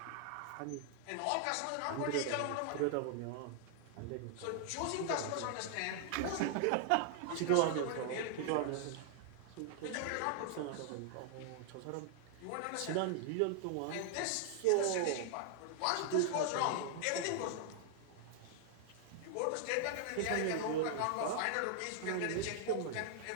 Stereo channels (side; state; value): both; different; correlation 0.00